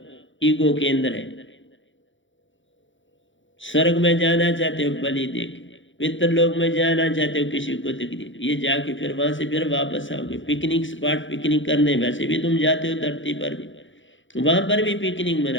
ईगो केंद्र है। स्वर्ग में जाना चाहते हो बलि देके, पितरलोक में जाना चाहते हो किसी को तकलीफ, ये जाके फिर वहां से फिर वापस आओगे। पिकनिक स्पॉट पिकनिक करने वैसे भी तुम जाते हो धरती पर भी, वहां पर भी पिकनिक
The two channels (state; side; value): late; right; 0.55 ms